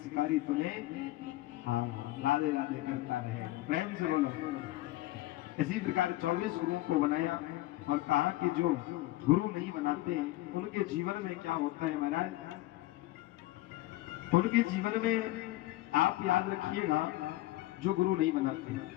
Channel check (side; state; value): right; quieter; 17.4 dB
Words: तुम्हें राधे राधे करता रहे। प्रेम से बोलो। इसी प्रकार 24 गुरुओं को बनाया और कहा कि जो गुरु नहीं बनाते उनके जीवन में क्या होता है महाराज, उनके जीवन में आप याद रखिएगा, जो गुरु नहीं बनाते हैं,